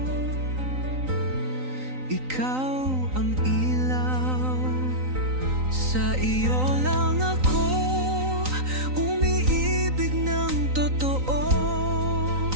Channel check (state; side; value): late; left; 3.9 ms